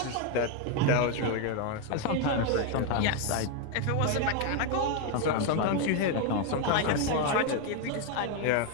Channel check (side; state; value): both; different; correlation 0.01